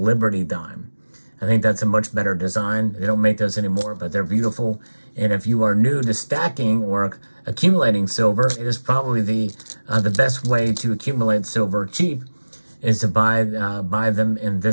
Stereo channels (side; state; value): both; inverted; correlation -1.00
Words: dime. I think that's a much better design. They don't make those anymore, but they're beautiful. And if you are new to stacking or accumulating silver, it is probably the best way to accumulate silver cheap is to buy them in